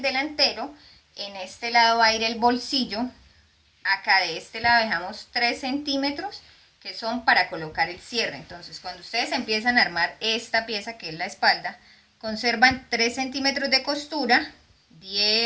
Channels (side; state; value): both; identical; correlation 1.00